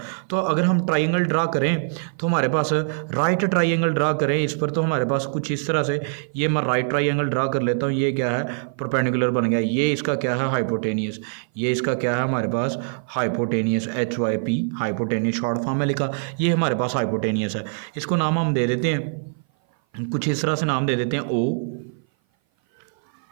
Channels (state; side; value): silent; left; 57 dB below the other